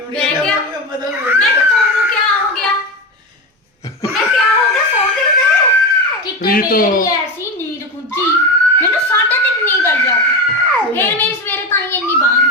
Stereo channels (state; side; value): normal; both; correlation 0.19